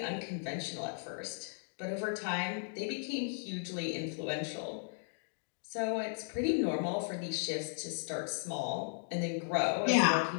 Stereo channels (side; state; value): right; silent; digital silence